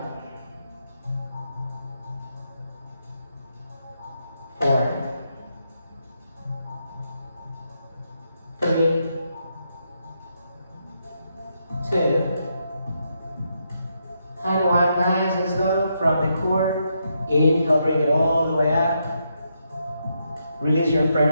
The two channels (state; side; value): inverted; both; correlation -0.80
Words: 4, 3, 2, and 1. Nice and slow from the core. Inhale, bring it all the way up. Release your